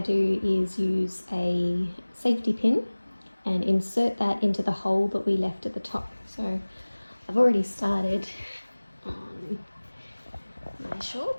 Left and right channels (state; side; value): inverted; both; correlation -1.00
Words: do is use a safety pin and insert that into the hole that we left at the top. So I've already started on my